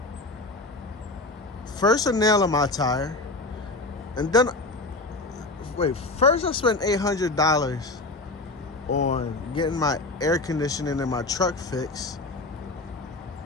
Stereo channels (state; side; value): quieter; right; 3.1 dB